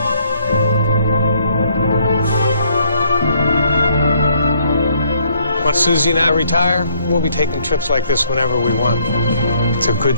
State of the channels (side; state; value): both; inverted; correlation -0.66